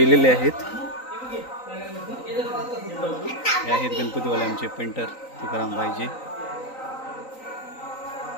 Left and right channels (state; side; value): late; right; 3.9 ms